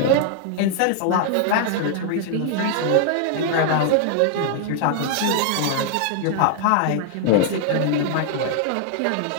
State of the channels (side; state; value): both; different; correlation 0.00